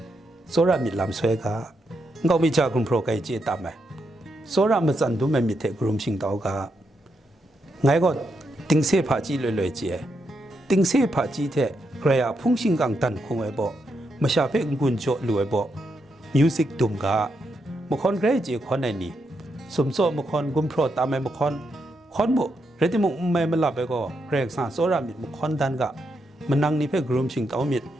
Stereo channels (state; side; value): normal; both; correlation 0.82